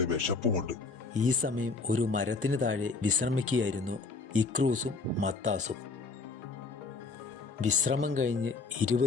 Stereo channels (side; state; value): right; quieter; 4.0 dB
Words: വിശപ്പുമുണ്ട്. ഈ സമയം ഒരു മരത്തിന് താഴെ വിശ്രമിക്കുകയായിരുന്നു ഇക്രൂസും മത്താസും. വിശ്രമം കഴിഞ്ഞ്